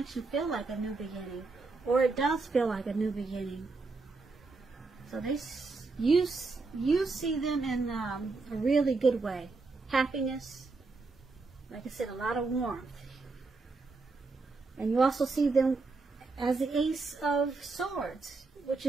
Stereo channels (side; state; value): left; quieter; 3.9 dB